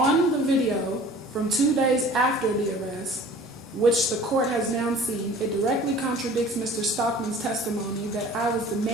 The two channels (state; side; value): normal; both; correlation 0.47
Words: the video from 2 days after the arrest, which the court has now seen, it directly contradicts Mr. Stockman's testimony that I was